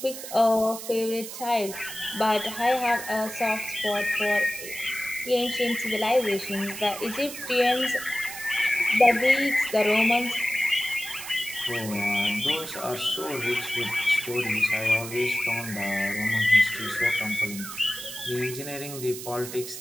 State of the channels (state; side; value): noise; right; hiss, 10 dB below the sound